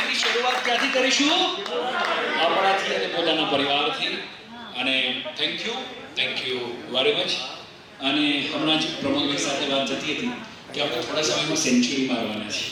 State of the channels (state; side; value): identical; both; correlation 1.00